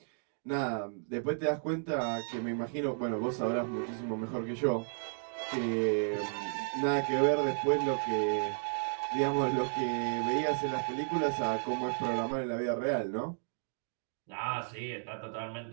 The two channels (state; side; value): silent; left; digital silence